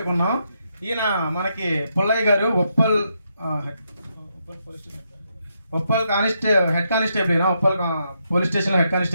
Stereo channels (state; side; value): inverted; both; correlation -0.80